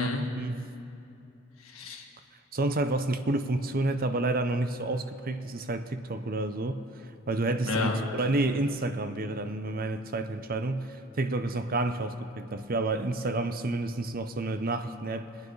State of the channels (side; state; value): both; normal; correlation 0.49